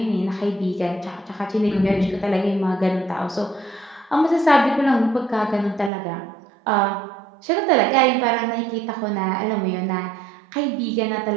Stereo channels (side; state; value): left; drops out; at 5.9 s